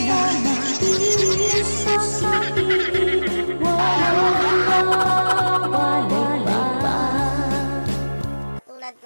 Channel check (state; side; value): inverted; both; correlation -1.00